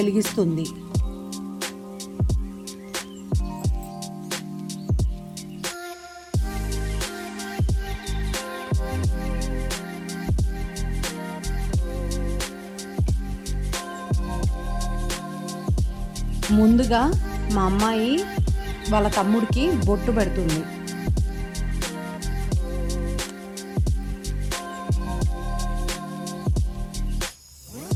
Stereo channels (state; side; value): identical; both; correlation 1.00